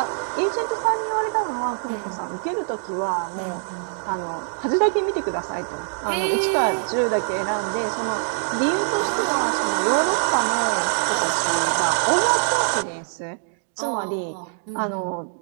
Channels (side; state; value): left; silent; digital silence